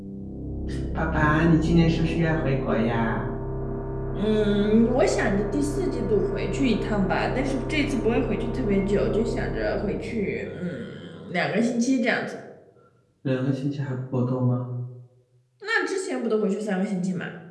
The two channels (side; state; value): both; identical; correlation 1.00